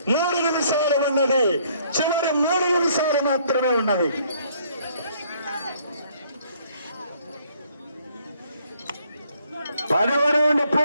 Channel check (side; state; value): both; inverted; correlation -0.64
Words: 3 నిమిషాలు ఉన్నది. చివరి 3 నిమిషాలు మాత్రమే ఉన్నది. పదవ రౌండ్